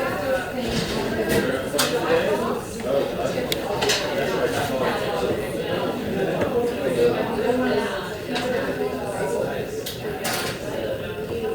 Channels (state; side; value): identical; both; correlation 1.00